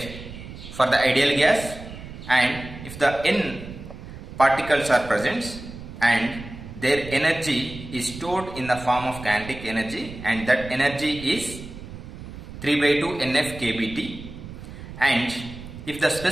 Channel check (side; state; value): right; noise; rumble, 13 dB below the sound